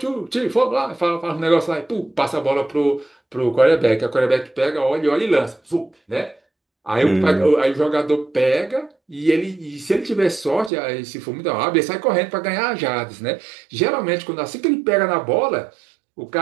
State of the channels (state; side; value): drops out; left; at 10.7 s